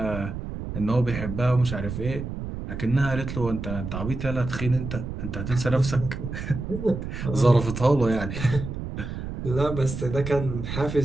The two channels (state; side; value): noise; right; rumble, 6 dB below the sound